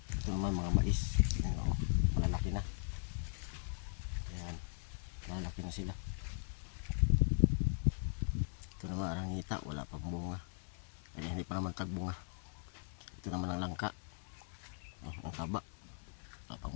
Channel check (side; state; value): right; silent; 52 dB below the other